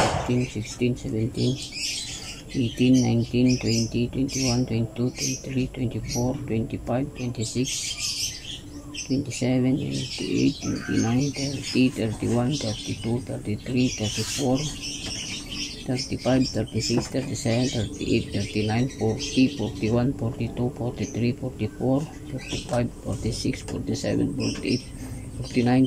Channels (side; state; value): both; identical; correlation 1.00